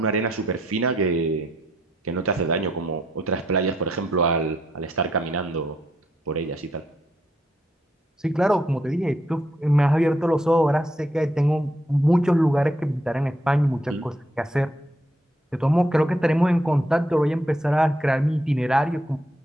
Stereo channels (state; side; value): normal; both; correlation 0.75